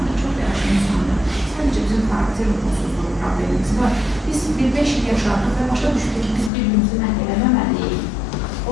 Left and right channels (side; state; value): right; drops out; at 6.5 s